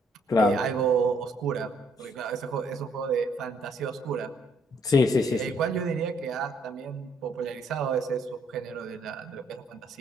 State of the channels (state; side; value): normal; both; correlation 0.68